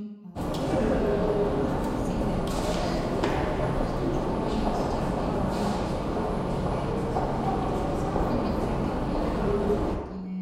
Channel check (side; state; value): both; identical; correlation 1.00